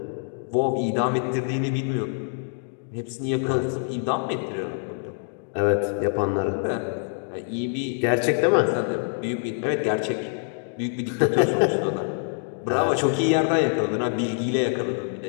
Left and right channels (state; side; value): silent; right; digital silence